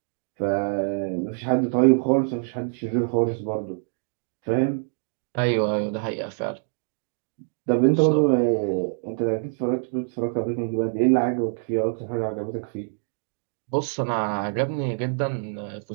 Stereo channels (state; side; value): silent; left; digital silence